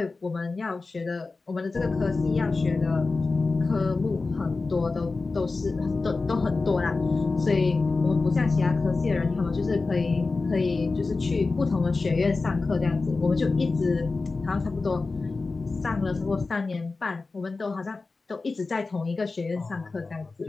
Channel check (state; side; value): quieter; right; 3.8 dB